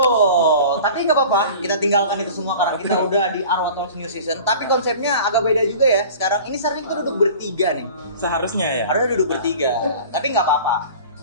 Tapi nggak apa-apa, kita tinggalkan itu semua karena kita udah di Arwa Talks New Season. Tapi konsepnya agak beda juga ya. Sekarang ini sebenarnya kita duduk bertiga nih. Seharusnya ya. Harusnya duduk bertiga. Tapi nggak apa-apa.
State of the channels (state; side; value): inverted; both; correlation -0.41